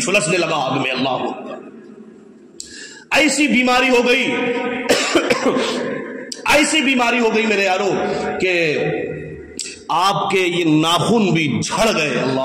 لگا آگ میں۔ اللہ اکبر، ایسی بیماری ہو گئی ایسی بیماری ہو گئی میرے یارو کہ آپ کے یہ ناخن بھی جھڑ گئے۔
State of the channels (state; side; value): identical; both; correlation 1.00